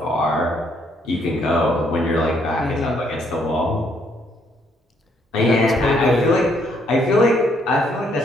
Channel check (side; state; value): both; normal; correlation 0.70